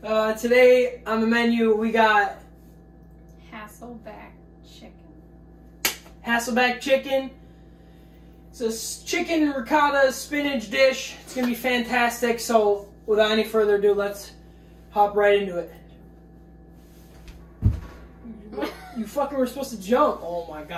Today on the menu we got HASSELBACK chicken. HASSELBACK chicken. It's a chicken ricotta spinach dish. It's gonna be fantastic. So, without any further ado, let's hop right into it. You fucking were supposed to jump. Oh my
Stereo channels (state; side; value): identical; both; correlation 1.00